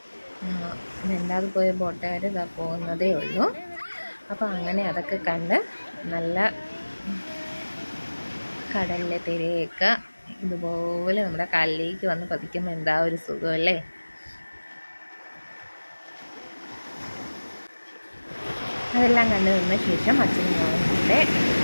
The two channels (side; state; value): both; inverted; correlation -1.00